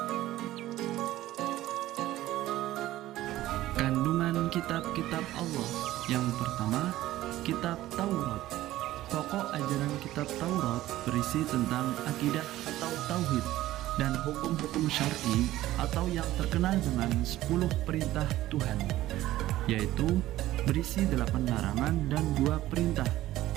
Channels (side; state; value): left; quieter; 15.3 dB